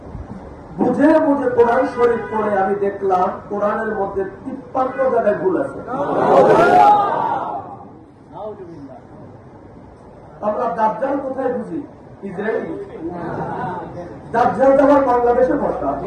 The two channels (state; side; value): identical; both; correlation 1.00